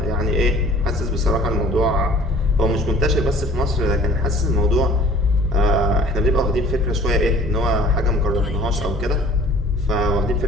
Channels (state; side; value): normal; both; correlation 0.50